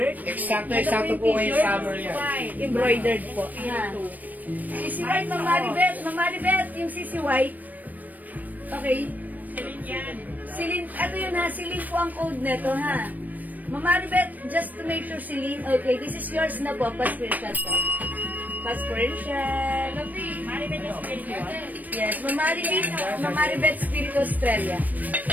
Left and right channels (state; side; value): late; left; 0.083 ms